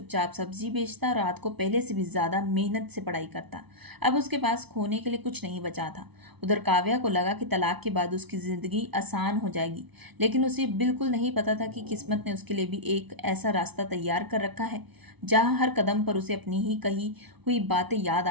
सब्जी बेचता, रात को पहले से भी ज्यादा मेहनत से पढ़ाई करता। अब उसके पास खोने के लिए कुछ नहीं बचा था। उधर काव्या को लगा कि तलाक के बाद उसकी जिंदगी आसान हो जाएगी, लेकिन उसे बिल्कुल नहीं पता था कि किस्मत ने उसके लिए भी एक ऐसा रास्ता तैयार कर रखा है जहां हर कदम पर उसे अपनी ही कही हुई बातें याद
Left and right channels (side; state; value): left; late; 0.99 ms